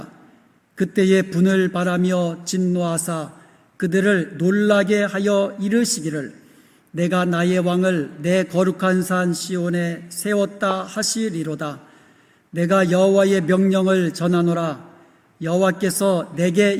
그때에 분을 바라며 진노하사 그들을 놀라게 하여 이르시기를 내가 나의 왕을 내 거룩한 산 시온에 세웠다 하시리로다. 내가 여호와의 명령을 전하노라. 여호와께서 내게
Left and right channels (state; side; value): identical; both; correlation 1.00